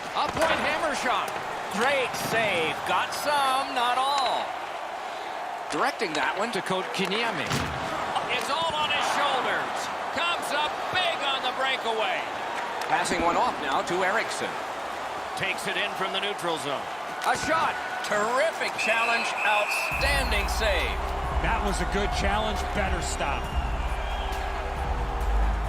A point hammer shot. Great save. Got some, not all. Directing that one to Coach Kinyemi. It's all on his shoulders. Comes up big on the breakaway. Passing one off now to Eriksson. Takes it in from the neutral zone. A shot. Terrific challenge. Outstanding save. That was a good challenge. Better stop.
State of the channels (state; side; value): identical; both; correlation 1.00